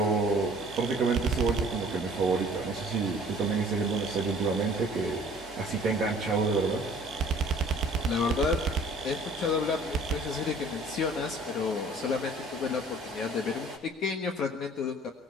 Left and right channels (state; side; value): normal; both; correlation 0.52